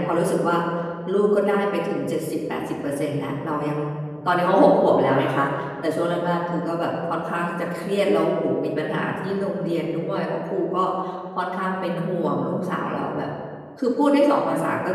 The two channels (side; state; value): both; identical; correlation 1.00